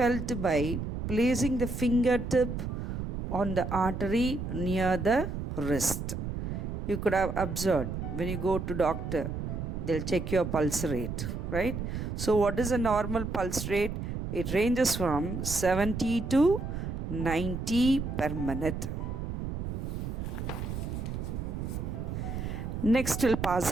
by placing the fingertip on the artery near the wrist. You could have observed when you go to doctor, they'll check your pulse rate, right? So what is a normal pulse rate? It ranges from 70 to 90 per minute. Next, we'll pass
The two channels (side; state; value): right; noise; rumble, 4 dB below the sound